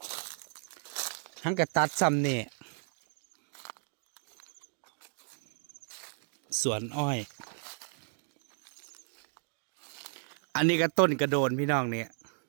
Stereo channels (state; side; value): silent; left; 55 dB below the other